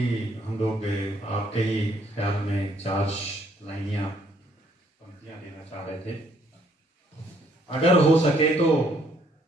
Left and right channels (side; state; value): both; normal; correlation 0.66